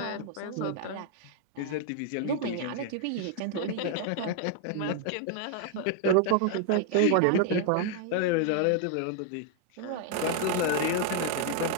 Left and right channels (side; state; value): both; different; correlation 0.00